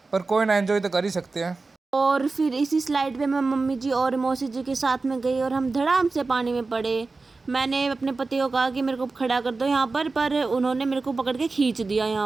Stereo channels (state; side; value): quieter; left; 3.8 dB